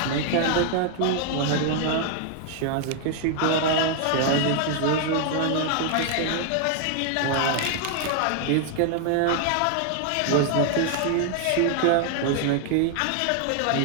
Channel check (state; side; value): different; both; correlation 0.00